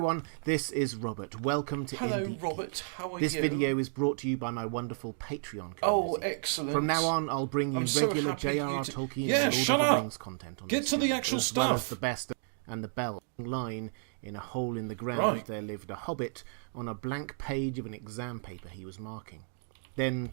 this is Robert. Welcome to Hello, Indie Robert. Geek. How are This you? video is brought to you by my wonderful Patreon community. Oh, excellent. From now on, I'll bring you I'm so regular happy J.R.R. you to- Tolkien Yeah, and Lord shut of the up! Rings content on Get this to the channel, actual as well as stuff. the best and the bell. Line in a hole in the ground, Right. there lived a hobbit on a blank page of an exam paper he was marking. Then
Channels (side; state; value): left; silent; digital silence